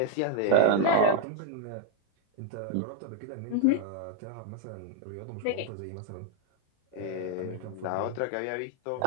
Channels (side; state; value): both; different; correlation 0.00